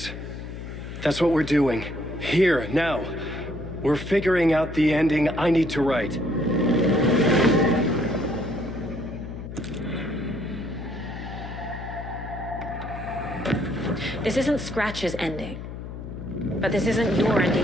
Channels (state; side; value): noise; left; hum, 10 dB below the sound